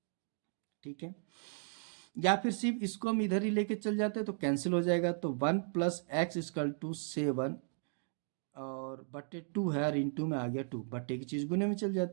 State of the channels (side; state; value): left; silent; digital silence